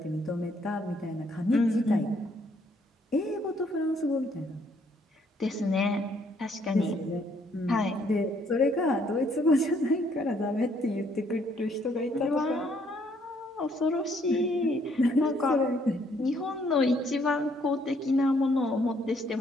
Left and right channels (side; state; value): both; normal; correlation 0.67